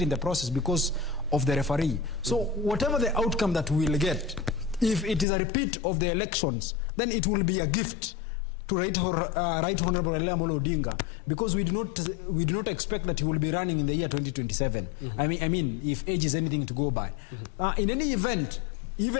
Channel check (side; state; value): right; drops out; at 5.2 s